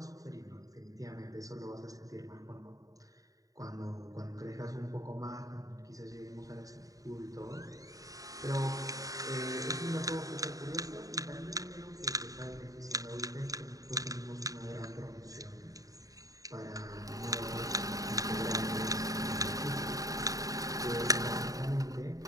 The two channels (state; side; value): late; left; 0.17 ms